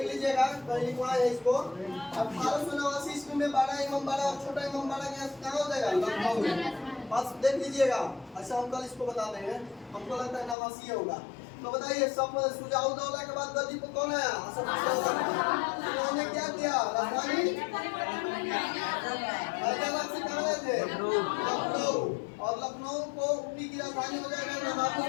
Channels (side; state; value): right; drops out; at 10.6 s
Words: लीजिएगा, कहीं लिखवा है इसको। 1889 ईस्वी में बड़ा इमामबाड़ा और छोटा इमामबाड़ा कहाँ हो जाएगा? लखनऊ में। बस देख लीजिएगा। अच्छा हम कल इसको बता देंगे, हमको लगता है नवासी होगा। तो बताइए सब सुजाउद्दौला के बाद गद्दी पर कौन आया? उन्होंने क्या किया? राजधानी हैदराबाद से कहाँ गए थे? लखनऊ। और लखनऊ को ऊपी की राजधानी हो जाएगा, नवाबों